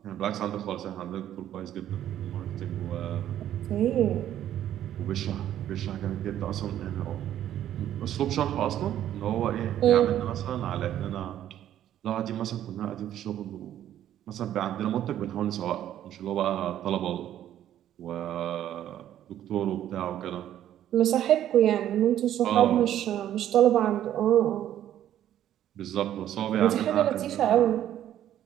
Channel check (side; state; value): left; quieter; 11.5 dB